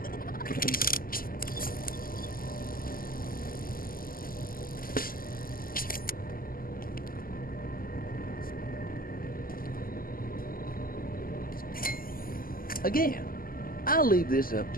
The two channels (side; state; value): right; late; 0.42 ms